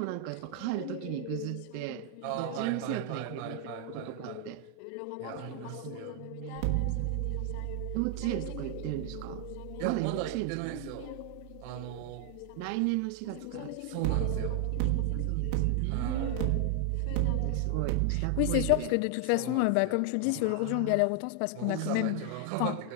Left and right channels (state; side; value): different; both; correlation 0.00